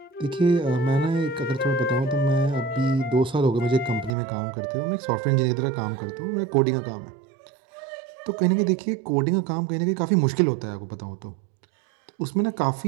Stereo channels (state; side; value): drops out; left; at 4.2 s